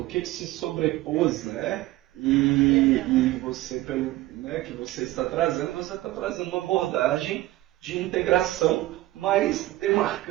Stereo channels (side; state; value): left; quieter; 17.2 dB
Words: o que se sobrepôs, né? E você, né, que você está trazendo uma abordagem de integração, mas